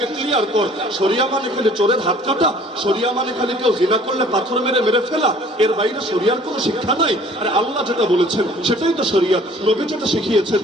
ক্লিয়ার কর। শরিয়া মানে খালি চোরের হাত কাটা? শরিয়া মানে খালি কেউ জিনা করলে পাথর মেরে মেরে ফেলা? এর বাইরে শরিয়ার কোনো শিক্ষা নাই? আর আল্লাহ যেটা বলেছেন সেটাই তো শরিয়াত, নবী যেটা শিখিয়েছেন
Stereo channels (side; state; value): both; normal; correlation 0.53